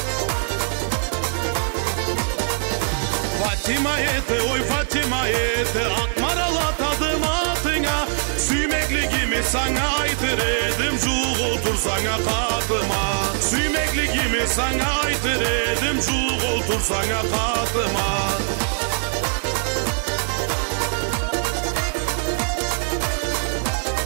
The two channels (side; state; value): left; silent; 64 dB below the other